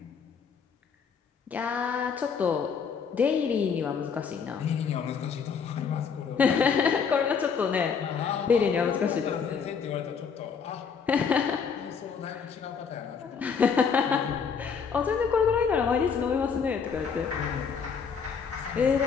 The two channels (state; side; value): quieter; right; 6.2 dB